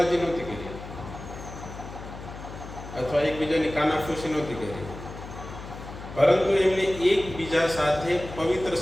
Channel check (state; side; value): noise; left; hum, 12 dB below the sound